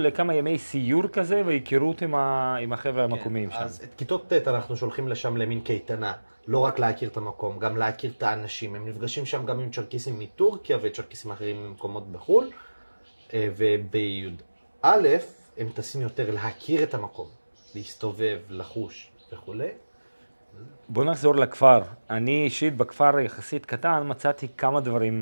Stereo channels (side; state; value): both; inverted; correlation -1.00